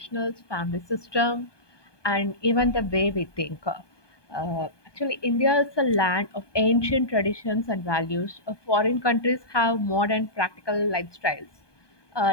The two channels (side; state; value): right; late; 1.2 ms